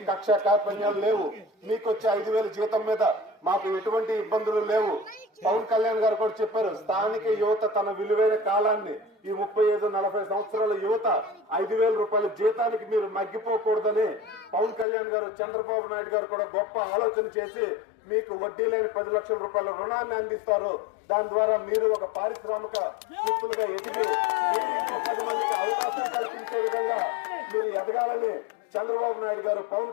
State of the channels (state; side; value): drops out; right; at 14.9 s